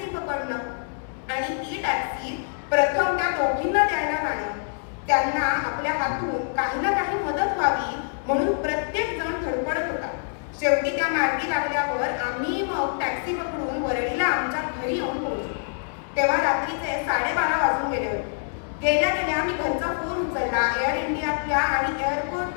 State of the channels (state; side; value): silent; right; digital silence